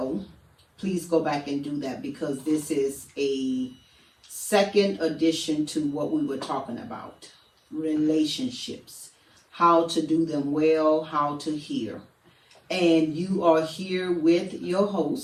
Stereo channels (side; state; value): both; identical; correlation 1.00